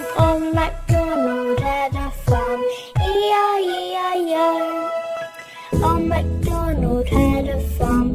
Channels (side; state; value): both; identical; correlation 1.00